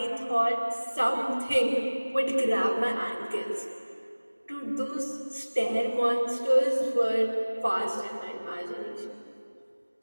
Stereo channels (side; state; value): both; inverted; correlation -1.00